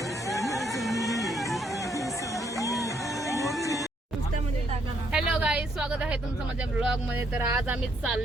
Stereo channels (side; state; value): both; normal; correlation 0.71